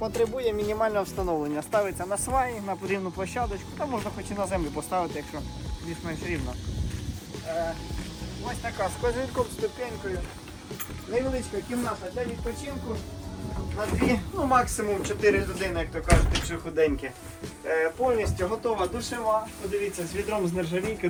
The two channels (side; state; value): both; identical; correlation 1.00